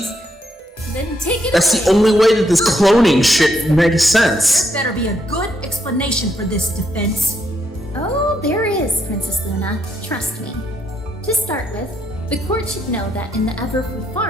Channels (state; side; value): normal; both; correlation 0.76